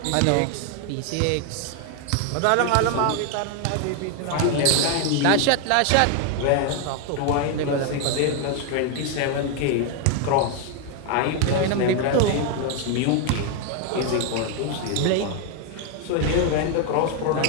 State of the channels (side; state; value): both; different; correlation 0.01